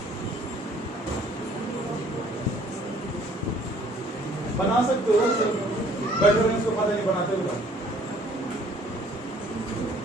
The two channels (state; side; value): normal; both; correlation 0.58